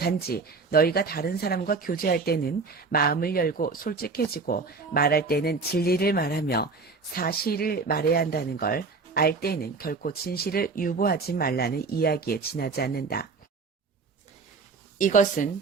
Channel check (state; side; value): quieter; left; 4.3 dB